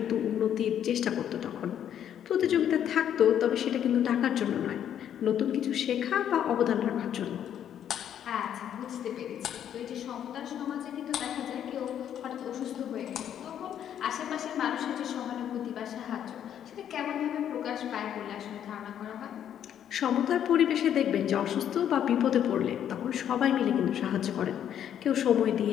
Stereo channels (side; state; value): right; quieter; 9.8 dB